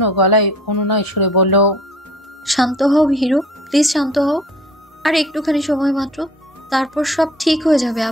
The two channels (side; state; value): both; normal; correlation 0.50